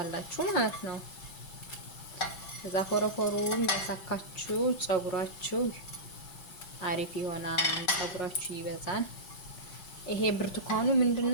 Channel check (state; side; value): late; right; 4.7 ms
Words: ማለት ነው። ከዛ ፎረፎሩን ያሳካችሁ ጸጉራችሁ አሪፍ ይሆናል፣ ጸጉራችሁ ይበዛል። ይሄ ብርቱካኑ